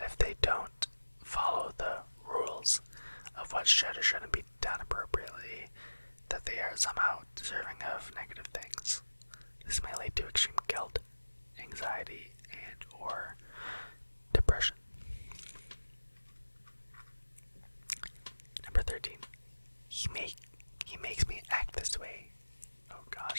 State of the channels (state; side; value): inverted; both; correlation -1.00